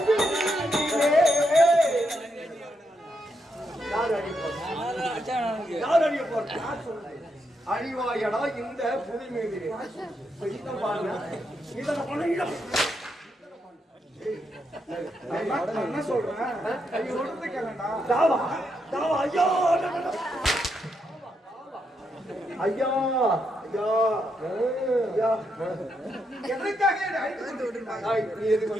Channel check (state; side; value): normal; both; correlation 0.81